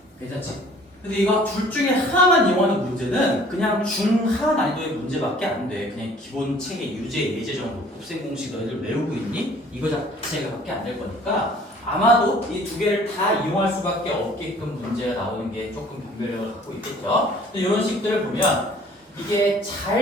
괜찮지? 근데 이거 둘 중에 하나만 이용하는 문제는 그냥 중하 난이도의 문제밖에 안 돼. 그냥 기본 책의 유제, 예제 정도 곱셈 공식 너희들 외우고 있니? 이거 자체가 밖에 안 될 거니까 아마도 이 두 개를 다 이용할 수밖에 없게끔 문제가 나오는 게 조금 변별력을 갖고 있겠죠. 근데 이런 식들을 보면 이게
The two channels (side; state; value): both; normal; correlation 0.53